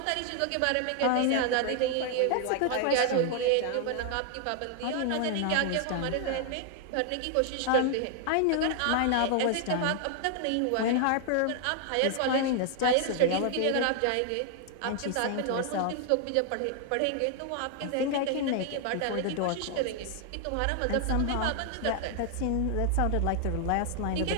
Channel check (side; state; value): both; different; correlation 0.00